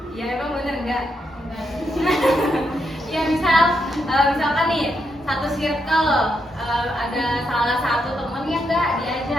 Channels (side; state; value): both; normal; correlation 0.81